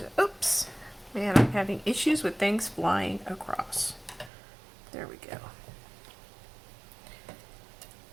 oops. Man, I'm having issues with things flying across. There we go.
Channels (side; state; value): left; drops out; at 4.3 s